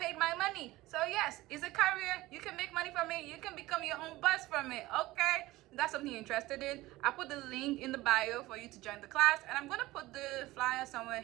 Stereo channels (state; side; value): quieter; left; 18.3 dB